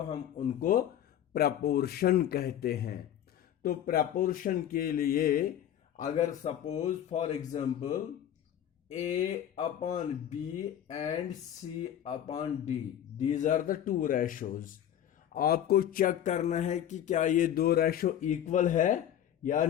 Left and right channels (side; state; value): right; quieter; 10.6 dB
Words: हम उनको प्रपोर्शन कहते हैं। तो प्रपोर्शन के लिए अगर suppose for example A upon B and C upon D, these are the two ratios. आपको चेक करना है कि क्या ये दो रेशो इक्वल है या